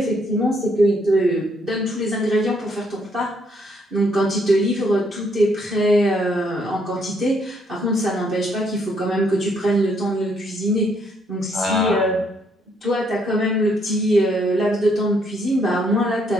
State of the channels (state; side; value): normal; both; correlation 0.71